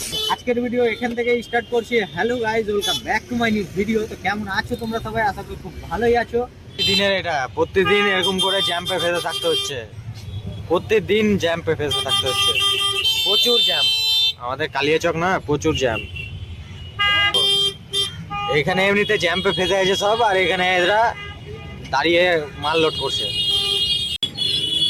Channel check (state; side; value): identical; both; correlation 1.00